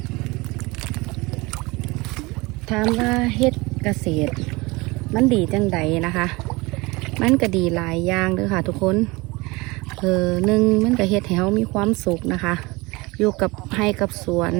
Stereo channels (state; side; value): quieter; left; 23.9 dB